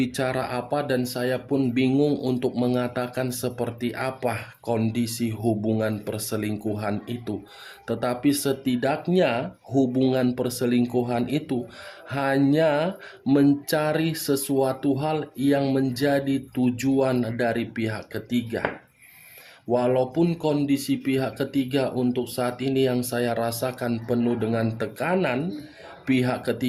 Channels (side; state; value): both; identical; correlation 1.00